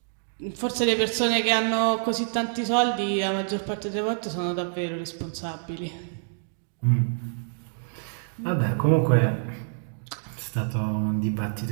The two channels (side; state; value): left; silent; digital silence